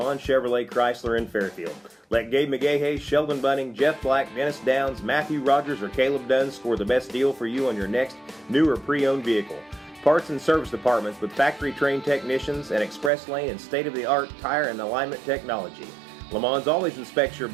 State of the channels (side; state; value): left; drops out; at 13.1 s